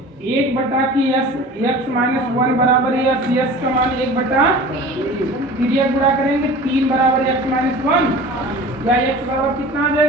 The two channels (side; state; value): both; normal; correlation 0.40